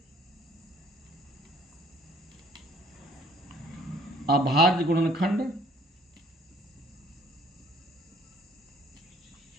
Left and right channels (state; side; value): normal; both; correlation 0.59